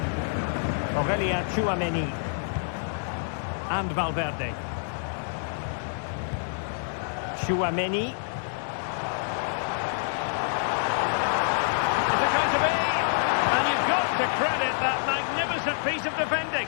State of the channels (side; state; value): right; silent; digital silence